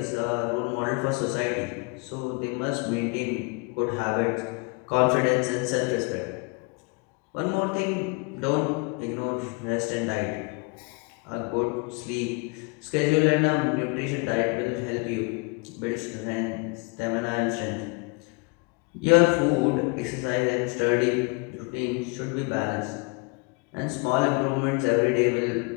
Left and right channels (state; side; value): quieter; right; 30.4 dB